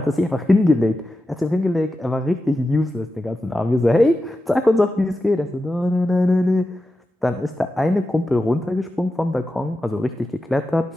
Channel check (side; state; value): both; normal; correlation 0.91